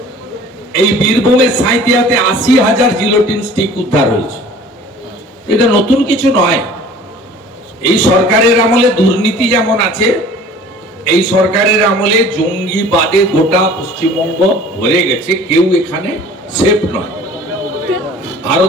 এই বীরভূমের সাঁইতিয়াতে ৮০,০০০ জিলোটিন স্টিক উদ্ধার হয়েছে। এটা নতুন কিছু নয়। এই সরকারের আমলে দুর্নীতি যেমন আছে, এই সরকারের আমলে জঙ্গিবাদে গোটা পশ্চিমবঙ্গ ভরে গেছে। কেউ এখানে সেফ নয়।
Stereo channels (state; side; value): normal; both; correlation 0.47